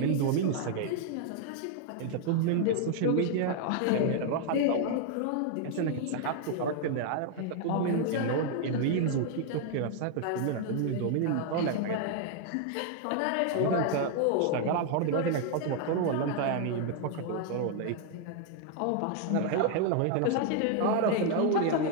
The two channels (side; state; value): both; different; correlation 0.00